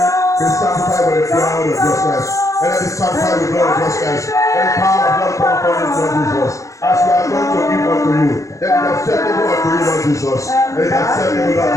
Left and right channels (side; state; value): right; late; 0.15 ms